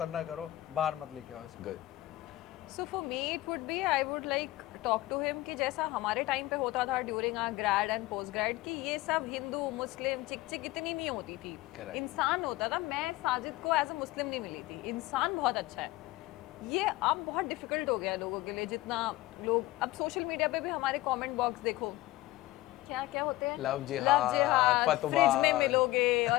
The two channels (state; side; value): quieter; right; 17.9 dB